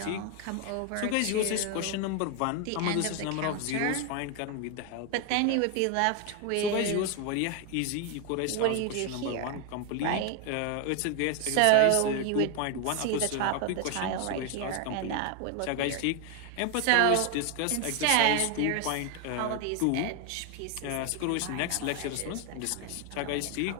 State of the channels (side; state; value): both; different; correlation 0.01